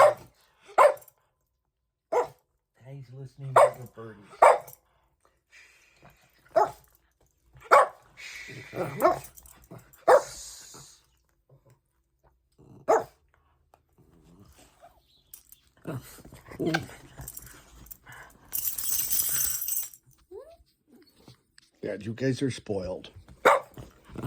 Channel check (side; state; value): both; identical; correlation 1.00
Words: Daddy's listening to the birdies. Yeah, you guys are spoiled.